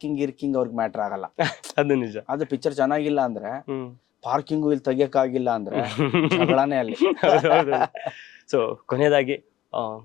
ಅವ್ರಿಗೆ ಮ್ಯಾಟರ್ ಆಗಲ್ಲ. ಅದು ನಿಜ. ಅದು ಪಿಕ್ಚರ್ ಚೆನ್ನಾಗಿಲ್ಲ ಅಂದ್ರೆ, ಪಾರ್ಕಿಂಗು ಇಲ್ಲಿ ತೆಗಿಯಕ್ಕಾಗಿಲ್ಲ ಅಂದ್ರೆ ಜಗಳಾನೇ ಅಲ್ಲಿ. ಸೊ ಕೊನೆಯದಾಗಿ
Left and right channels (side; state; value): right; quieter; 12.8 dB